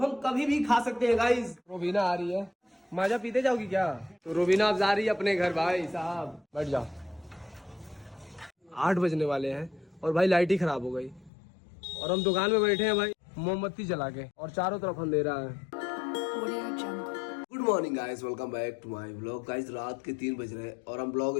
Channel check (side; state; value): right; drops out; at 11.3 s